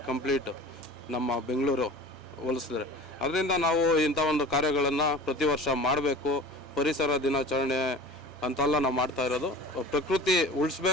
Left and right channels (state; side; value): normal; both; correlation 0.40